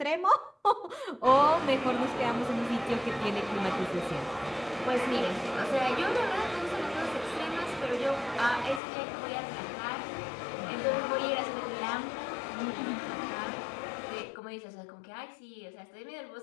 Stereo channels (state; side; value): drops out; right; at 8.8 s